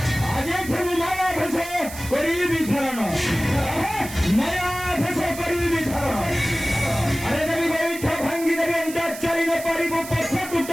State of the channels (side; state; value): right; noise; hiss, 12 dB below the sound